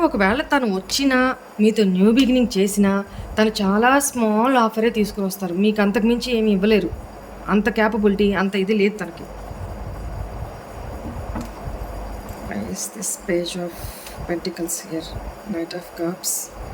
ఒకవేళ తను వచ్చినా మీతో న్యూ బిగినింగ్ చేసినా తను చాలా స్మాల్ ఆఫరే తీసుకుని వస్తారు. మీకు అంతకుమించి ఏమి ఇవ్వలేరు. అంత క్యాపబిలిటీ, అంత ఇది లేదు తనకి. Is this page of pentacles here? Knight of cups.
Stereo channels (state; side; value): identical; both; correlation 1.00